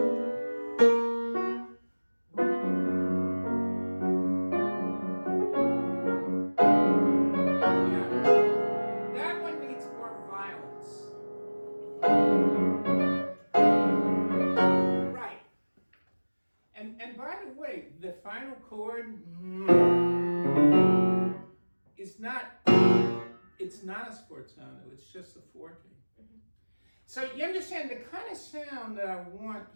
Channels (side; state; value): both; inverted; correlation -1.00